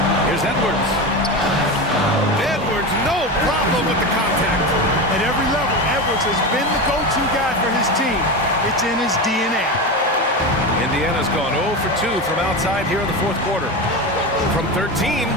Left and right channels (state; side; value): normal; both; correlation 0.21